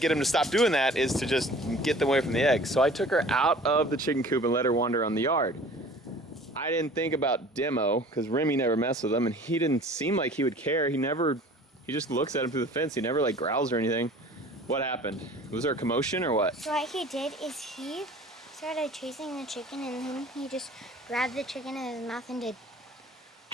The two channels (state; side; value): normal; both; correlation 0.47